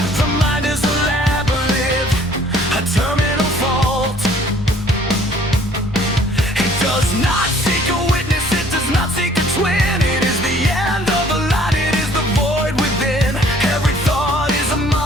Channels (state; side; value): normal; both; correlation 0.57